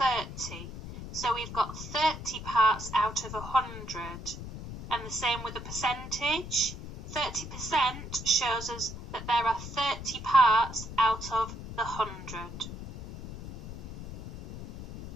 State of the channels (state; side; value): noise; left; rumble, 10 dB below the sound